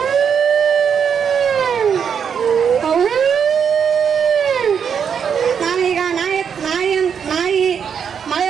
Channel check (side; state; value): left; quieter; 7.3 dB